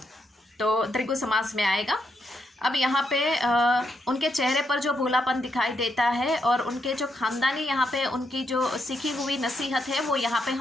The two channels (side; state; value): both; normal; correlation 0.80